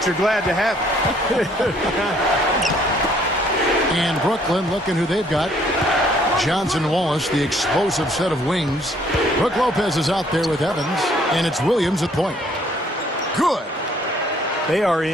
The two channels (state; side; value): normal; both; correlation 0.63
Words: you're glad to have it. And Brooklyn, looking who they've got. Johnson Wallace, the explosive set of wings. Brook Lopez is out there with Evans, and it's Williams at point. Good. They are